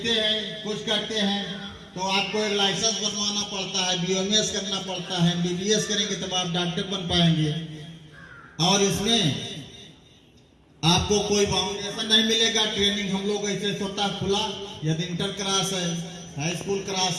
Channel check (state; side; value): identical; both; correlation 1.00